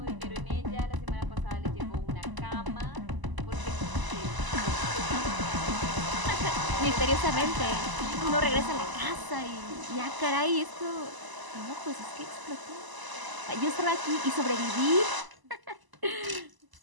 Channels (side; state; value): left; late; 1.0 ms